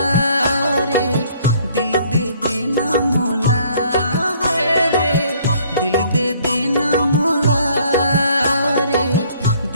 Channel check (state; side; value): inverted; both; correlation -0.60